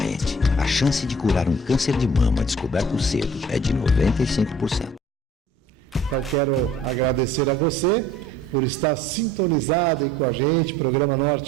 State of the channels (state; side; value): normal; both; correlation 0.52